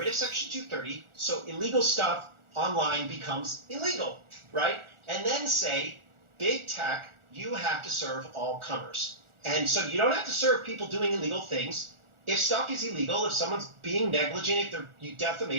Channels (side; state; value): left; late; 1.4 ms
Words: of Section 230, so illegal stuff online becomes illegal, right? And then say, big tech, you have to serve all comers. And so you don't have to serve people doing illegal things. If stuff is illegal, if someone's being negligent, if they're